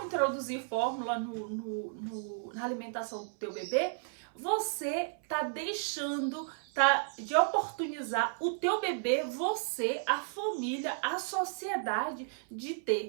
introduzir fórmula na alimentação do teu bebê, você tá deixando de oportunizar o teu bebê, você, a família, a sociedade, de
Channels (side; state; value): left; silent; 56 dB below the other